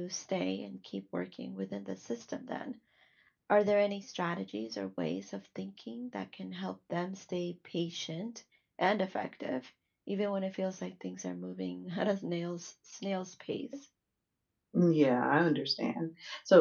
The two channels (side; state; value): both; identical; correlation 1.00